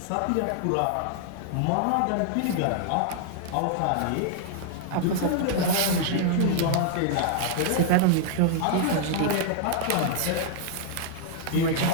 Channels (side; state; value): both; different; correlation -0.01